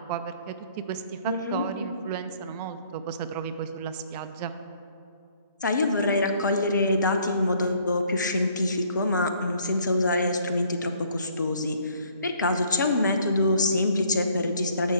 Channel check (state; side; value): inverted; both; correlation -0.61